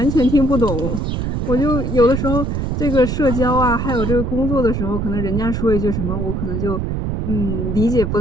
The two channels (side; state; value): right; noise; rumble, 1 dB below the sound